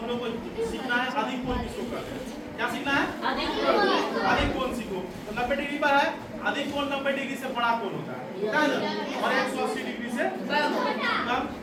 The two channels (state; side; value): identical; both; correlation 1.00